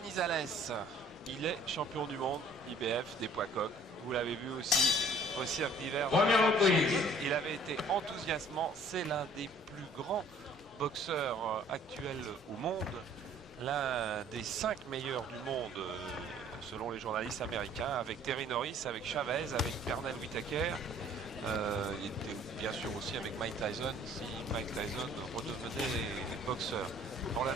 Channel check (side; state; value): both; normal; correlation 0.56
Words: Il est champion du monde IBF des poids coqs. Vous l'avez vu aussi au cirque d'hiver. Il avait été enthousiasmant. C'est l'un des plus grands boxeurs actuels au monde. L'un des 5 meilleurs du monde selon les journalistes américains, avec Terry Norris, avec Chavez, avec Pernell Whitaker. Il était bien sûr aussi avec Mike Tyson, si Mike Tyson redevenait boxeur.